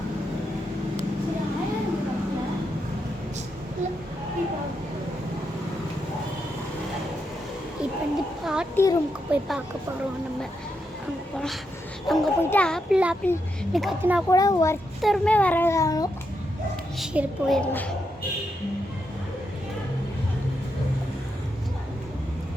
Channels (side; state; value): both; normal; correlation 0.83